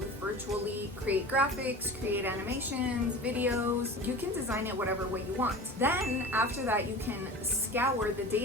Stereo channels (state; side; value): normal; both; correlation 0.35